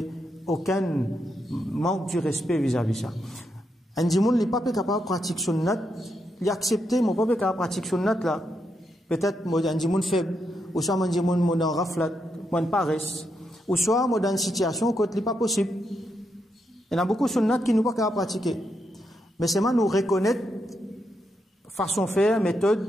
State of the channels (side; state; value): both; normal; correlation 0.82